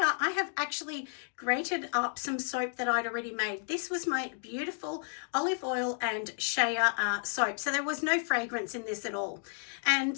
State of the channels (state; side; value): silent; right; 56 dB below the other